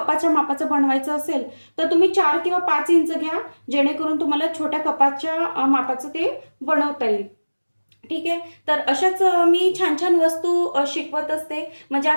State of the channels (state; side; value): inverted; both; correlation -1.00